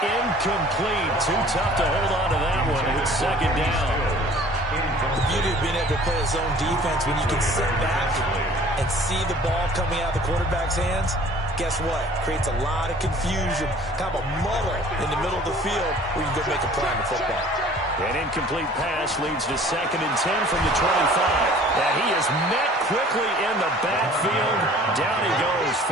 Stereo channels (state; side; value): normal; both; correlation 0.50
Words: incomplete. Too tough to hold on to that one. It's 2nd down. The beauty of being able to play a zone defense when you can sit back and see the ball coming out of the quarterback's hands, guess what? Creates a lot of confusion, kind of a muddle in the middle of the field where you can go make a play on the football. An incomplete pass leads to 2nd and 10 from the 25. And he is met quickly in the backfield. Down he goes,